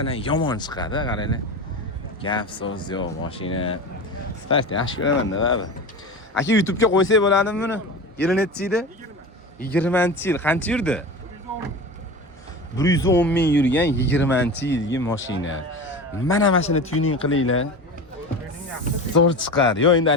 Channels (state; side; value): normal; both; correlation 0.29